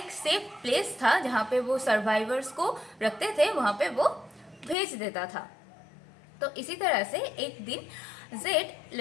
सेफ प्लेस था जहाँ पे वो सर्वाइवर्स को रखते थे, वहाँ पे वो भेज देता था। तो इसी तरह से एक दिन जेड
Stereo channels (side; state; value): right; drops out; at 4.8 s